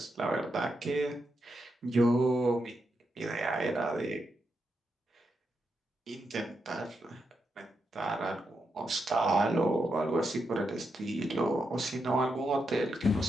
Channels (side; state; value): both; normal; correlation 0.84